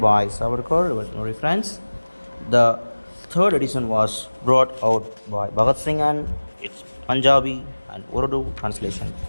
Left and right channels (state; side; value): inverted; both; correlation -1.00